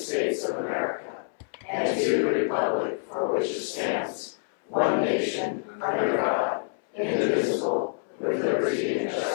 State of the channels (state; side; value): silent; right; 60 dB below the other